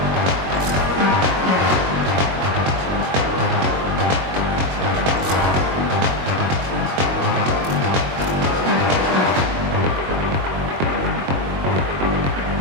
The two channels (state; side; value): late; left; 22 ms